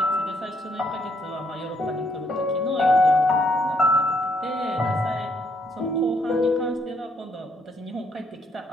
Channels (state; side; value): normal; both; correlation 0.71